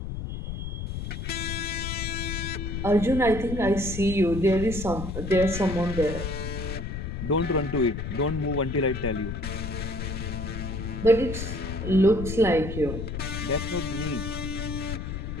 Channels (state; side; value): noise; left; rumble, 5 dB below the sound